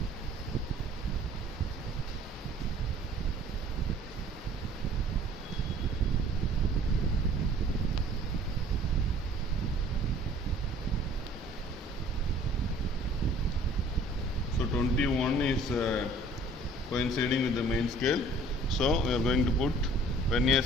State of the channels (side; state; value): both; normal; correlation 0.52